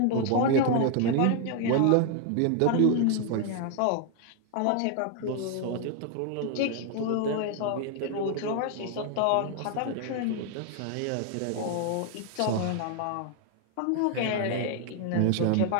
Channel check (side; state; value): both; different; correlation 0.00